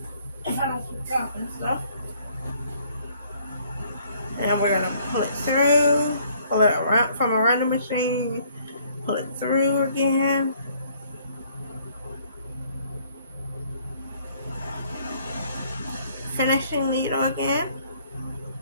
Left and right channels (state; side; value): inverted; both; correlation -0.62